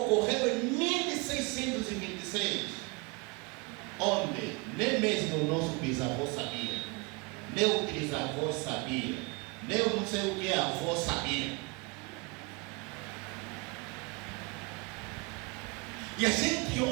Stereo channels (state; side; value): quieter; left; 28.3 dB